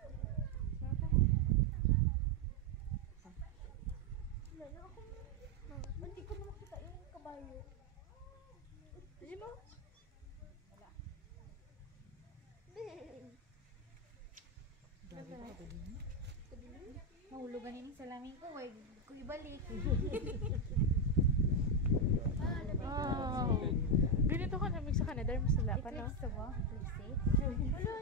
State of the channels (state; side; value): normal; both; correlation 0.05